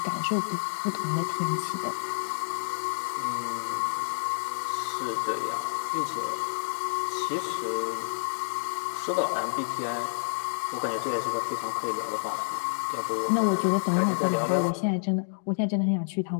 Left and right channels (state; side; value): silent; right; digital silence